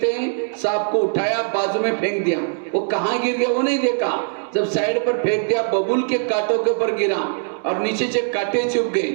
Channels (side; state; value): left; silent; 65 dB below the other